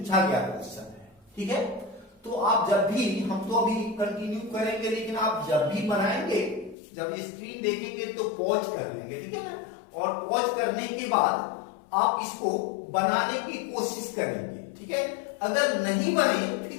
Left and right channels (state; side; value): drops out; right; at 6.8 s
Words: गया क्वेश्चन है, ठीक है। तो आप जब भी, हम तो अभी कंटिन्यू करेंगे, लेकिन आप जब भी बनाएंगे, जब स्क्रीन देखेंगे तो पॉज कर लेंगे, ठीक है ना, और पॉज करने के बाद आप इसको बनाने की कोशिश करेंगे, ठीक है। अगर नहीं बने